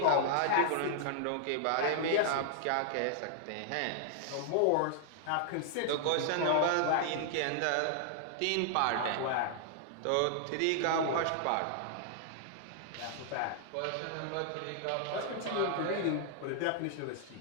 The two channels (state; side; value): different; both; correlation -0.01